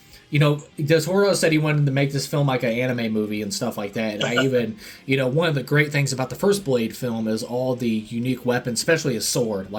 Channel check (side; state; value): both; identical; correlation 1.00